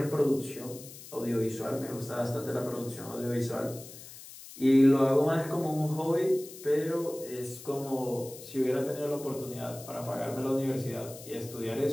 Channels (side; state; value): left; noise; hiss, 16 dB below the sound